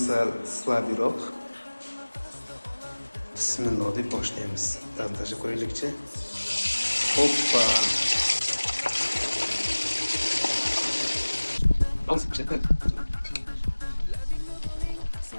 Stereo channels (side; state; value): both; inverted; correlation -1.00